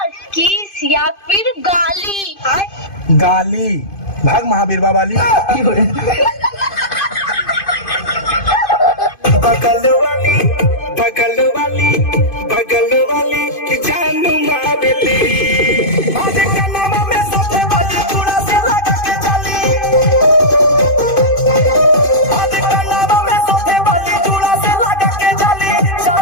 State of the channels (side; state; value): right; late; 2.5 ms